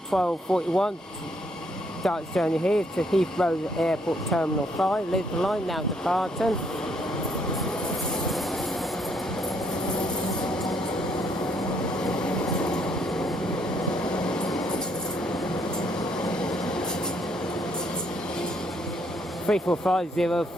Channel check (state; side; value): normal; both; correlation 0.70